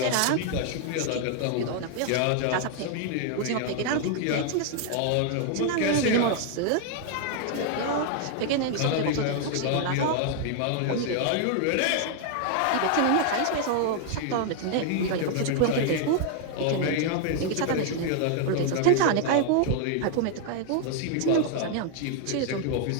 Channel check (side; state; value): both; different; correlation 0.00